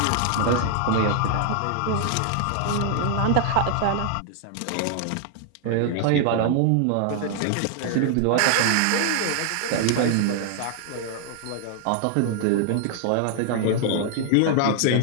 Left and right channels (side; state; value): both; different; correlation 0.00